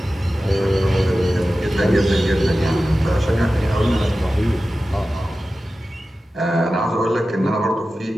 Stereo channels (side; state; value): both; normal; correlation 0.94